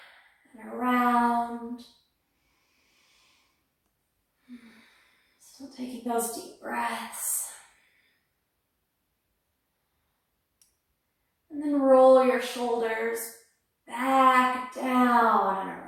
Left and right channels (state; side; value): identical; both; correlation 1.00